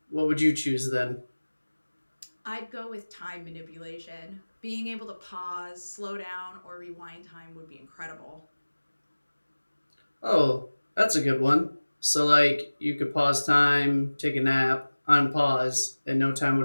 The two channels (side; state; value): both; inverted; correlation -1.00